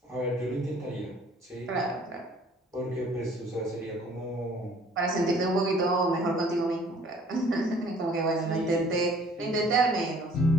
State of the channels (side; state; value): both; normal; correlation 0.55